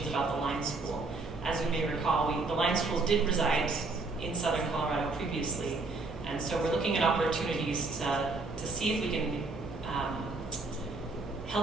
about the line school. As you may recall, the line school did reside in southern Colorado previously, and so we're looking at opportunities to see if we can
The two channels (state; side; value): quieter; left; 3.6 dB